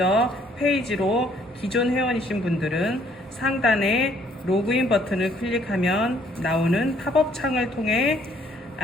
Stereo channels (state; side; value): normal; both; correlation 0.63